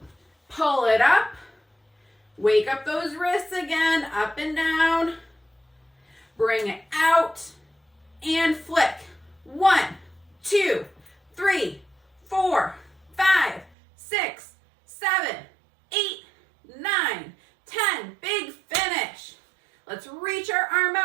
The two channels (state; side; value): drops out; left; at 13.7 s